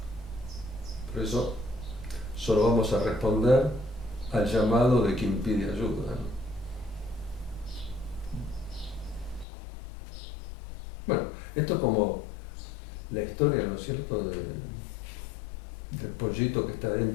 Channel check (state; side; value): drops out; right; at 9.5 s